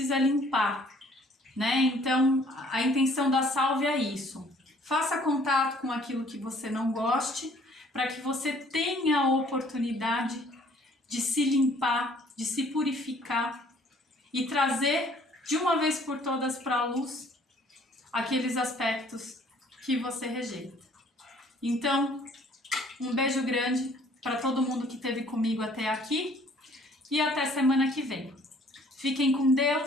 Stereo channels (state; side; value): normal; both; correlation 0.58